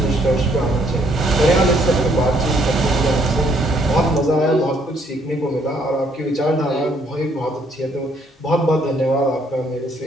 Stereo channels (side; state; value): both; normal; correlation 0.67